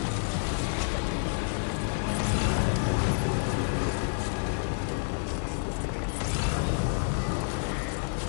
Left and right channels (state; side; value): silent; right; digital silence